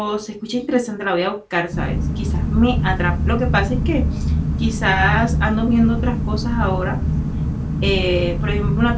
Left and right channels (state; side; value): identical; both; correlation 1.00